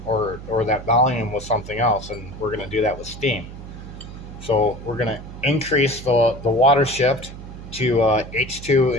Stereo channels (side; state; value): right; noise; hum, 13 dB below the sound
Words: or that volume with something else, and we're going to do that with steam. So we're going to increase the water shift to H2